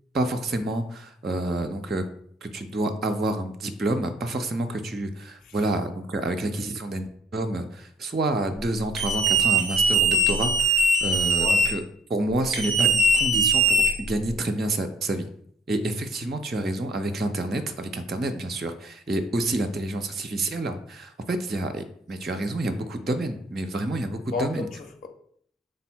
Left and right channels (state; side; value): normal; both; correlation 0.58